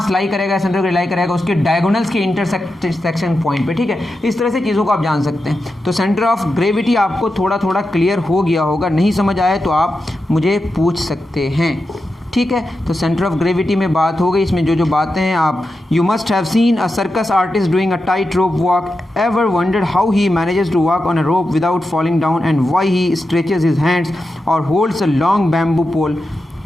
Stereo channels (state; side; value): normal; both; correlation 0.89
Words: लाई करेगा, सेंटर ऑफ लाई करेगा उसके डायगोनल्स के इंटरसेक्शन पॉइंट पे, ठीक है। इस तरह से चीज़ों को आप जान सकते हैं। तो सेंटर ऑफ ग्रेविटी आपको थोड़ा थोड़ा क्लियर हो गया होगा, नहीं समझ आए तो आप मुझे पूछ सकते हैं, ठीक है। तो सेंटर ऑफ ग्रेविटी में बात हो गई। इसमें जो जो बातें हैं आप, you must have seen a circus artist doing a tight rope walk, ever wondered how he manages to walk on a rope without falling down and why he stretches his hands और holds a long bamboo pole